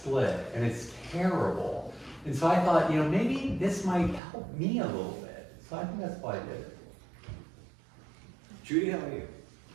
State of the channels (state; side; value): drops out; left; at 4.2 s